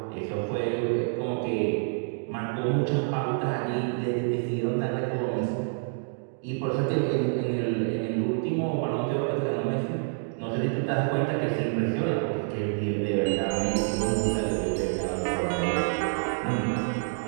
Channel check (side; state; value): left; silent; digital silence